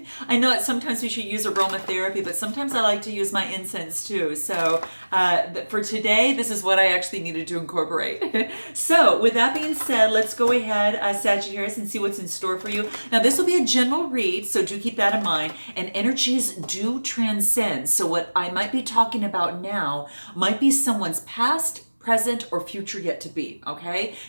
I know that sometimes we should use aromatherapy, but sometimes I like to use my incense too. So for today, this is what I actually needed to incorporate. So with that being said, let's go ahead, Sagittarius, and see what's in store for you. Now, this will be a general read, so do keep that in mind. And energies do transcend. So what I might be talking about now might be someone's past, present, or future yet to be, okay?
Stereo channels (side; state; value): both; inverted; correlation -1.00